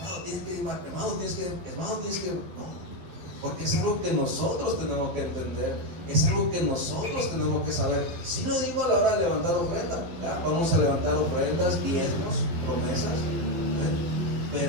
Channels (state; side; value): late; left; 12 ms